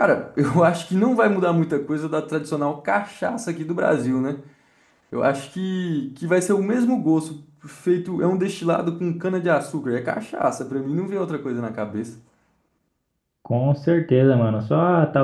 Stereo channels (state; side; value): identical; both; correlation 1.00